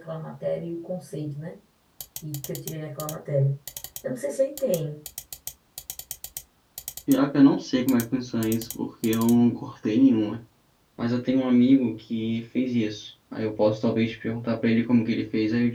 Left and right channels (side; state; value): both; identical; correlation 1.00